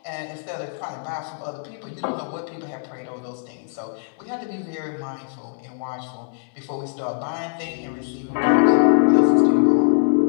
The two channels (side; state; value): right; silent; digital silence